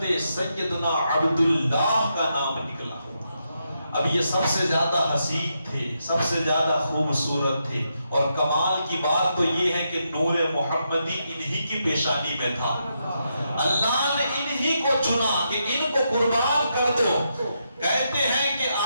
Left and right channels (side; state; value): both; inverted; correlation -0.82